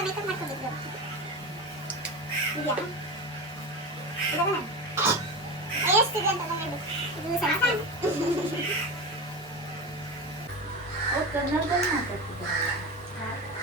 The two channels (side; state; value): both; normal; correlation 0.24